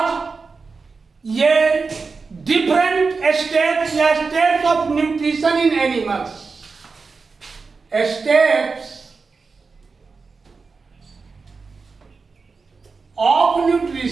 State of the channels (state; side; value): quieter; left; 4.5 dB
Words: ये डिफरेंट स्टेप्स या steps of nutrition in animals, steps of